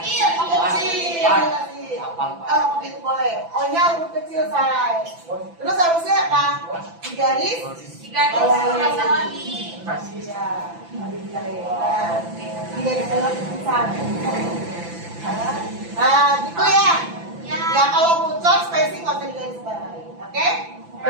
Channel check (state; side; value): late; left; 5.9 ms